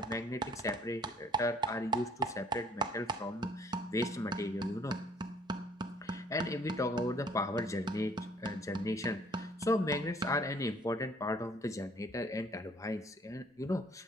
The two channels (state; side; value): normal; both; correlation 0.59